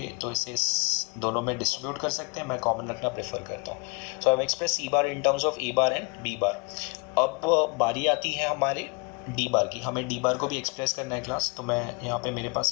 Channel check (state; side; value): quieter; right; 31.8 dB